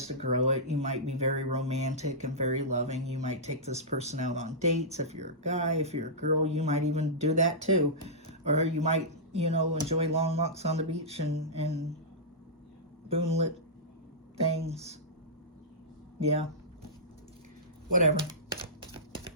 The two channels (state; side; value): normal; both; correlation -0.14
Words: to grow it. You might be very romantic and very loving. You might take this person out on dates. If you're a guy, if you're a girl, you might even do that too. Or you might, enjoy long walks on the beach and moonlit things. Yeah. Whatever.